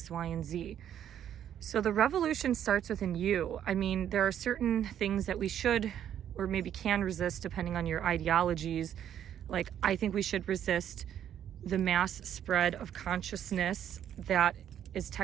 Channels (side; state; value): left; quieter; 10.1 dB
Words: Y, and Z. So the revolution starts within you. I mean, there are certain things that we should or maybe can resist depending on your ideologies. Like, I think we should resist the mass spread of consciousness that is